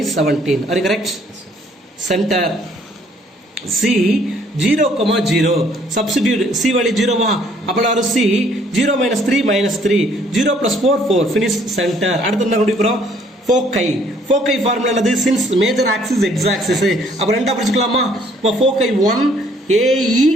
17. Are you correct? Center. C 0, substitute C value 0 வா, அப்போ C 0 minus 3 minus 3, 0 plus 4 4, finish center. அடுத்து என்ன கண்டுபிடிக்கிறோம், foci. Foci formula என்னது, since major axis x axis, அப்போ ரெண்டா பிரிச்சுக்கலாமா. இப்போ foci 1 AE,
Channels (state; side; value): normal; both; correlation 0.62